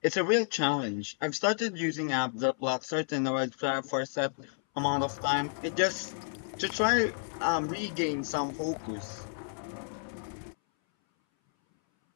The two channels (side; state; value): right; silent; 57 dB below the other